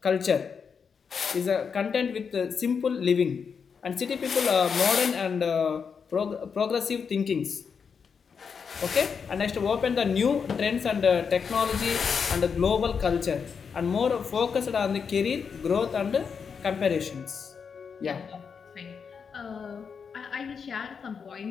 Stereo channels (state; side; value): quieter; right; 6.2 dB